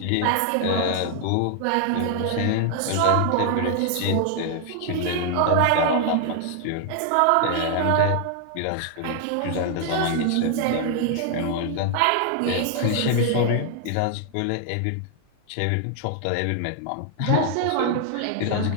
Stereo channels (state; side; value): different; both; correlation 0.00